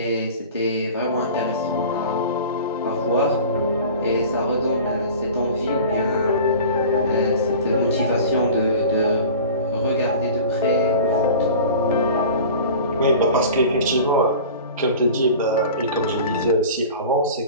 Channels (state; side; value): inverted; both; correlation -0.39